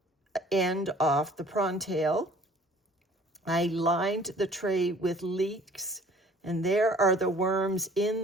end off the prawn tail. I lined the tray with leeks, and there are the worms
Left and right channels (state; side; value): normal; both; correlation 0.53